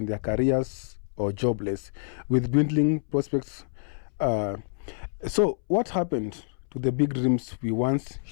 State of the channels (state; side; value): silent; right; 60 dB below the other